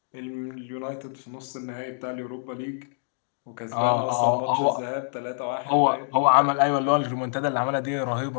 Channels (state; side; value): silent; right; digital silence